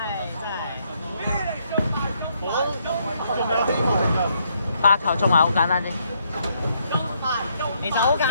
真係。 8球中埋好簡單啫。其實好簡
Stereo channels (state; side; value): inverted; both; correlation -0.73